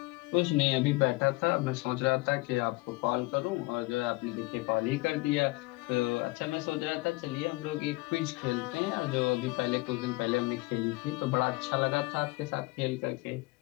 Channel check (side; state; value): right; quieter; 23.4 dB